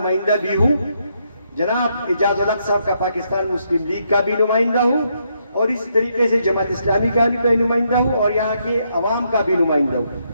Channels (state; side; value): inverted; both; correlation -0.77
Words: بھی ہوں، جناب اعجاز الحق صاحب کا پاکستان مسلم لیگ کا بھی نمائندہ ہوں، اور اس طریقے سے جماعت اسلامی کا بھی نمائندہ ہوں، اور یہاں کے عوام کا بھی نمائندہ ہوں۔